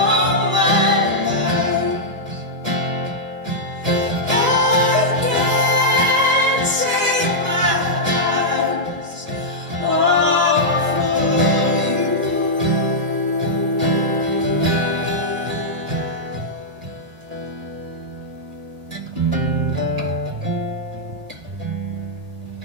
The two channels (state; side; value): late; left; 1.8 ms